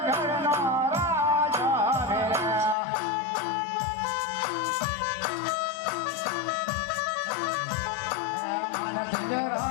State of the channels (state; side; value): drops out; right; at 2.8 s